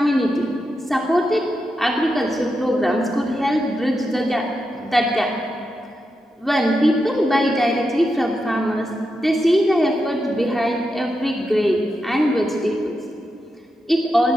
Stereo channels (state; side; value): normal; both; correlation 0.87